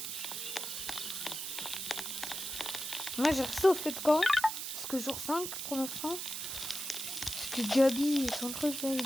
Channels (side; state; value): right; noise; hiss, 5 dB below the sound